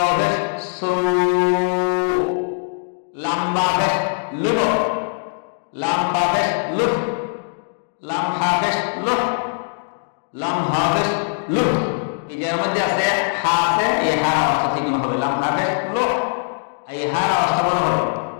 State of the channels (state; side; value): silent; right; 65 dB below the other